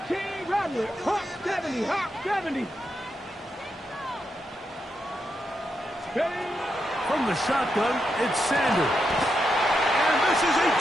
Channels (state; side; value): normal; both; correlation 0.84